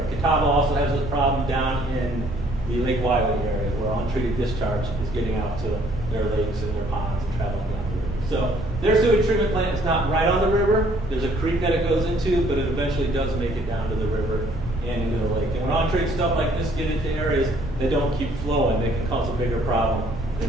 Catawba also has a problem down in the Lake Wiley area where untreated discharge is getting out to their lakes and their ponds and traveling down the river. So their sewage treatment plant is not right on the river. There's a creek that it goes into, but it eventually does make it down to the river and into the lake. And when untreated stuff like this get into areas that don't keep flowing, they can cause a bigger problem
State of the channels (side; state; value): both; normal; correlation 0.62